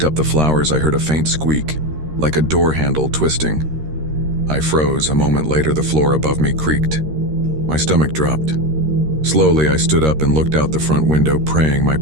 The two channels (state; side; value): late; left; 13 ms